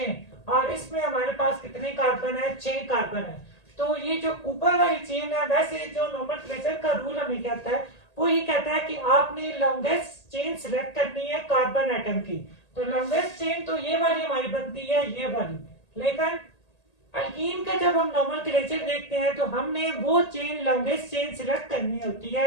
और इसमें हमारे पास कितने कार्बन है? 6 कार्बन है। तो ये जो ऊपर वाली चेन है, वैसे जो नोमेनक्लेचर का रूल हमें कहता है वो ये कहता है कि आपने लॉन्गेस्ट चेन सिलेक्ट करनी है कार्बन एटम की। तो लॉन्गेस्ट चेन तो ये वाली हमारी बनती है, ये वाली। लेकिन अल्कीन का जब हम नोमेनक्लेचर देखते हैं तो हमने वो चेन लॉन्गेस्ट चेन सिलेक्ट करनी होती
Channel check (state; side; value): late; right; 1.8 ms